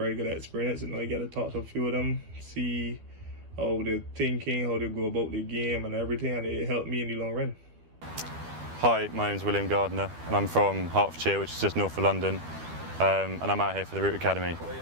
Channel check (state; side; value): late; left; 12 ms